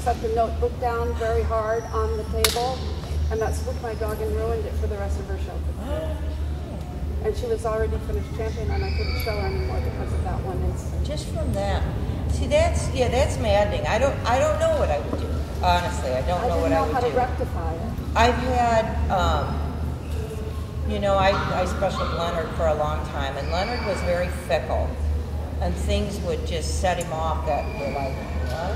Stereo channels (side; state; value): both; identical; correlation 1.00